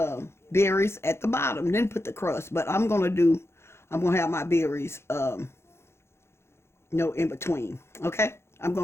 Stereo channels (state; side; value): late; right; 0.12 ms